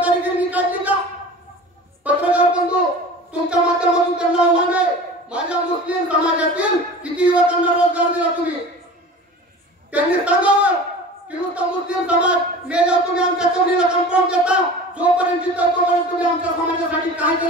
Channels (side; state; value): both; normal; correlation 0.38